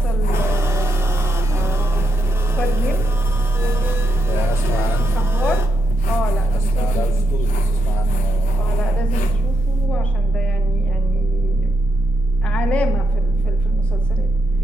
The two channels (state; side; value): normal; both; correlation 0.83